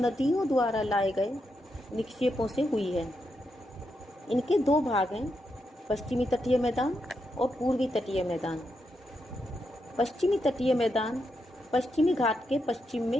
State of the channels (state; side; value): normal; both; correlation 0.83